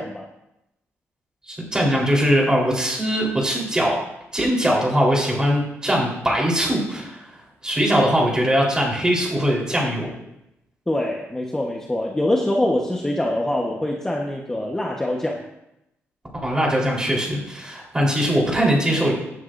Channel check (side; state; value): both; normal; correlation 0.82